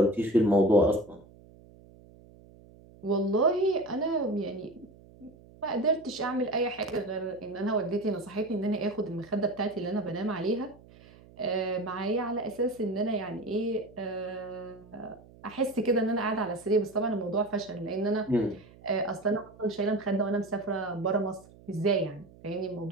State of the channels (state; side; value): noise; right; hum, 23 dB below the sound